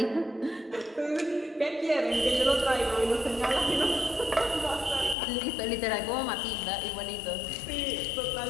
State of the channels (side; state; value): right; drops out; at 5.2 s